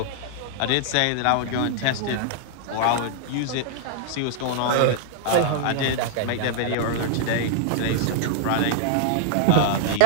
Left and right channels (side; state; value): both; different; correlation -0.01